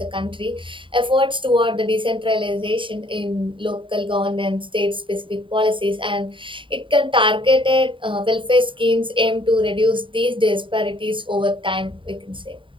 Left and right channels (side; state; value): left; late; 0.25 ms